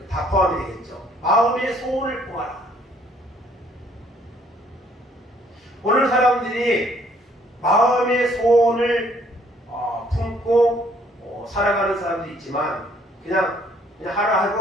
다 포함이 되겠죠. 마음의 소원을 품어라. 오늘 사람들이 마음의 소원을 품고 살아가는 사람도 있지만 그냥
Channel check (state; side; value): normal; both; correlation 0.63